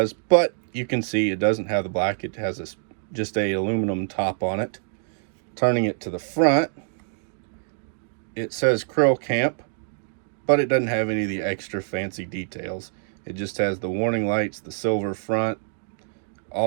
but you can see it doesn't have the black. It has just a aluminum top on it. Turning it to the front, it says Kreilkamp, but it doesn't have any of the extra fancy details. It just has the warning lights, the silver front,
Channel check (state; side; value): silent; left; digital silence